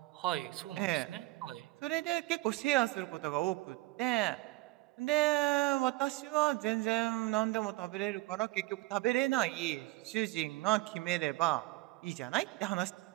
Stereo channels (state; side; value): quieter; left; 20.3 dB